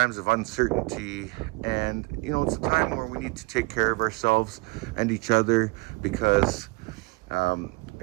of uncertainty. And it's a time where we need to take care of ourselves and each other, because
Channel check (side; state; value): left; quieter; 25.9 dB